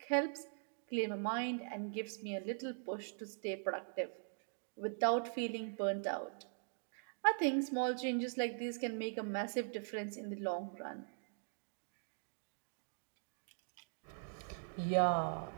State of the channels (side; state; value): left; silent; digital silence